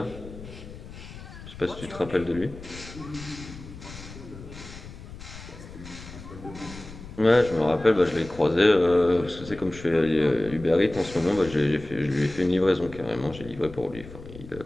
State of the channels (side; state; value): left; noise; rumble, 15 dB below the sound